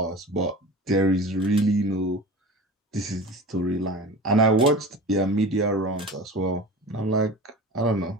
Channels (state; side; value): normal; both; correlation 0.35